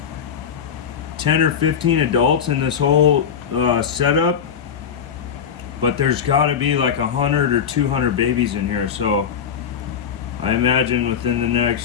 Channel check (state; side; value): quieter; right; 7.6 dB